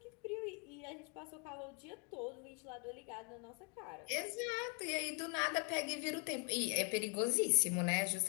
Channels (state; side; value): quieter; right; 36.6 dB